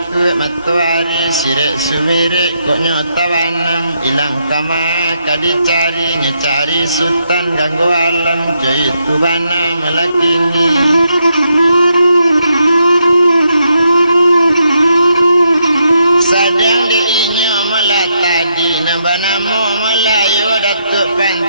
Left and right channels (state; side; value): inverted; both; correlation -0.79